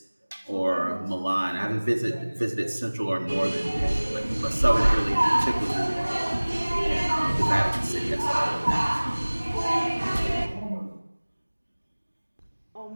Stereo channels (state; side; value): inverted; both; correlation -1.00